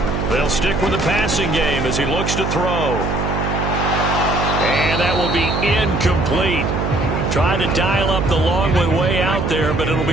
They'll stick with the passing game as he looks to throw. And that will be incomplete. Tried to dial up the long way out there, but it'll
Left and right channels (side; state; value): right; noise; hum, 2 dB below the sound